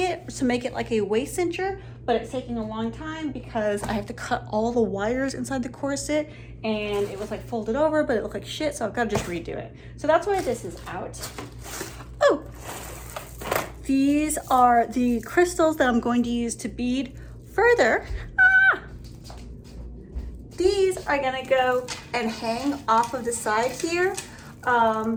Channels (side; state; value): both; identical; correlation 1.00